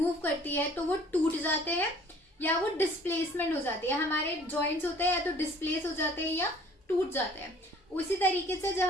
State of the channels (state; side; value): normal; both; correlation 0.54